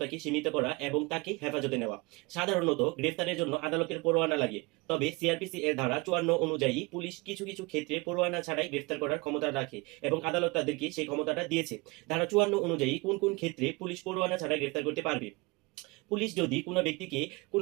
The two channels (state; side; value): quieter; left; 25.7 dB